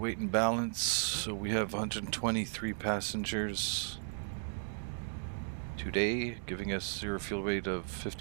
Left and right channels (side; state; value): left; silent; digital silence